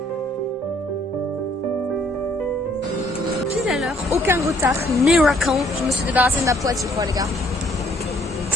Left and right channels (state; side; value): normal; both; correlation 0.64